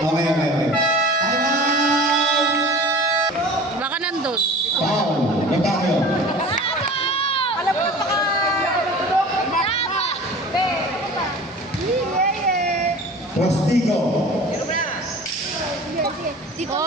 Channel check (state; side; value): normal; both; correlation 0.40